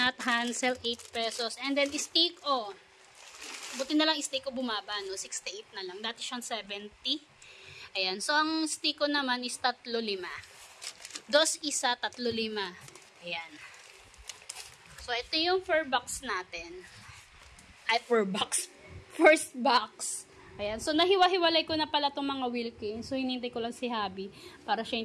Hansel, 8 pesos. And then, steak, buti na lang steak ko bumaba, no? 68 na lang. Dati siyang 70. Ayan, so, ang steak ko naman is 3.5. 2 isa, 3.5. Ayan. So, ito yung first box natin. Ay, first box. Ayan. So, nahiwa-hiwalay ko na pala itong mga Wilkins. So, hinintay ko lang si Habi para siya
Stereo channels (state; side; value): identical; both; correlation 1.00